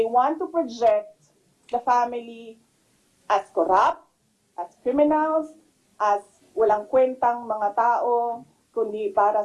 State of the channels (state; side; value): identical; both; correlation 1.00